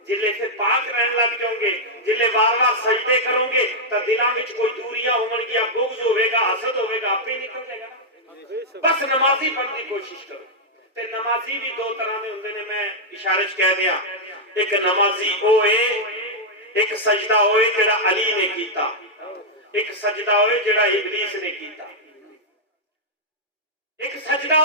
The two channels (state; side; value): normal; both; correlation -0.05